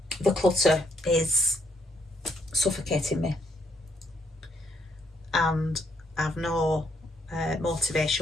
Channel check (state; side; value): normal; both; correlation 0.72